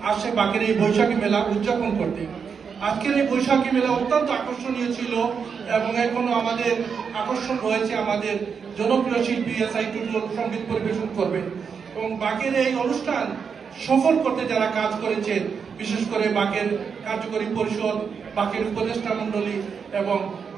আসে বাকের এই বৈশাখী মেলা উদযাপন করতে। আজকের এই বৈশাখী মেলা অত্যন্ত আকর্ষণীয় ছিল এবং এখনো আমাদের আকর্ষণ রয়েছে। আমাদের জনপ্রিয় শিল্পী এসআই টুটুল সঙ্গীত পরিবেশন করবেন এবং বাকের এই অনুষ্ঠান সফল করতে যারা কাজ করেছেন, বিশেষ করে বাকের কার্যকরী পরিষদ, বাকের উপদেষ্টা মন্ডলী এবং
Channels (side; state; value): left; quieter; 6.3 dB